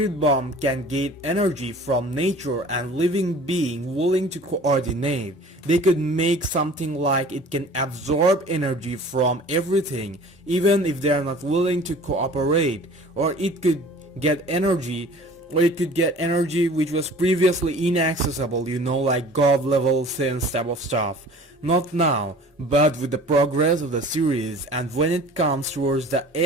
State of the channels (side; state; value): both; normal; correlation 0.46